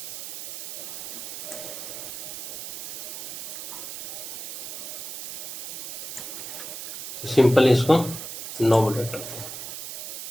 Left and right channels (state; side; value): noise; right; hiss, 8 dB below the sound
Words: तो सिंपल इसको नो बॉर्डर करते हैं।